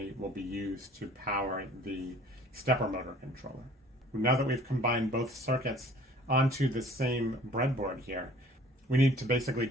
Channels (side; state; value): both; normal; correlation 0.52